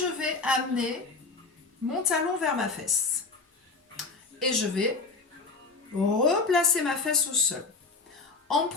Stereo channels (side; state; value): right; quieter; 4.0 dB